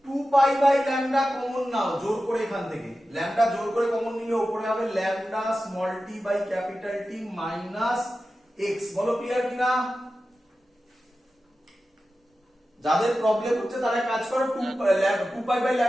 2 pi by lambda, common নাও জোর করে, এখান থেকে ল্যামডা জোর করে কমন নিলে উপরে হবে lambda small t by capital T minus x। বলো ক্লিয়ার কিনা? যাদের প্রবলেম হচ্ছে তারা কাজ করো, 2 পাই বাই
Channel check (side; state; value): both; normal; correlation 0.93